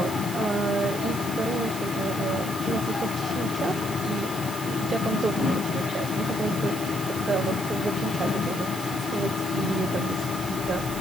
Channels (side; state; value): right; noise; hiss, 10 dB below the sound